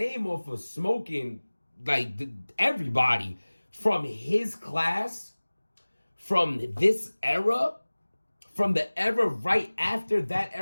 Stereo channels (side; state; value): both; inverted; correlation -1.00